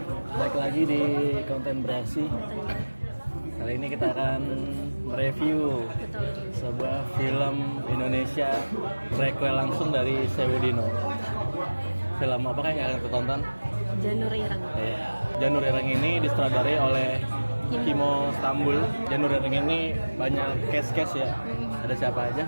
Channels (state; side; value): inverted; both; correlation -1.00